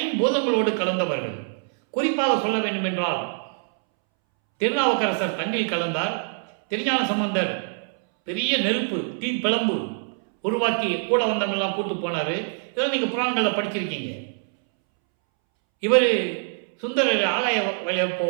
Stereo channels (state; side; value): silent; left; 62 dB below the other